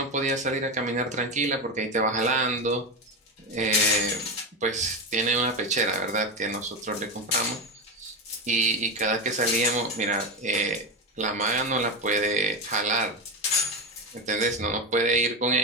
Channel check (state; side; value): normal; both; correlation 0.14